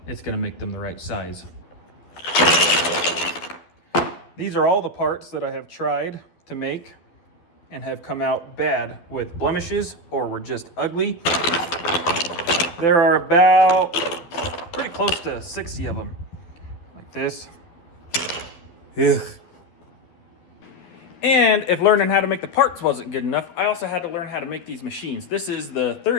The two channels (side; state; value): right; late; 12 ms